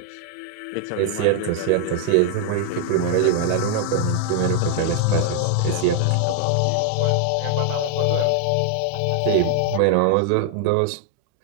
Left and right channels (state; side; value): different; both; correlation 0.00